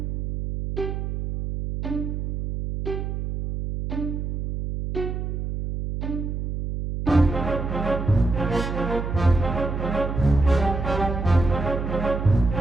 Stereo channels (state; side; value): noise; right; hum, 3 dB below the sound